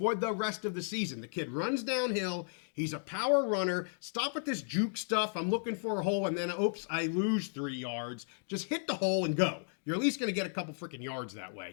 the rest of the season. The kid runs downhill. He's a power runner. Stop with this juke stuff. I'm looking for a hole, and then, oops, I lose 3 yards. Just hit the hole and go. You're at least going to get a couple freaking yards that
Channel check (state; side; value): silent; right; digital silence